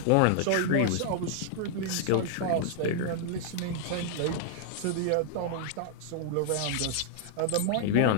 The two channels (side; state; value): both; different; correlation -0.01